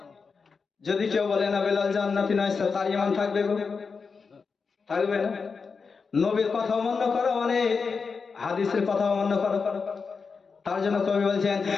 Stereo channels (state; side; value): quieter; right; 5.1 dB